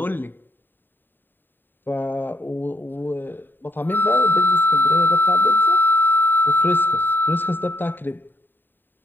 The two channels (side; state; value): right; late; 0.094 ms